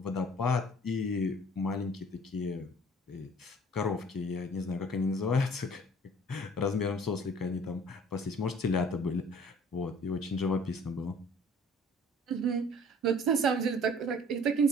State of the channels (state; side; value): normal; both; correlation 0.52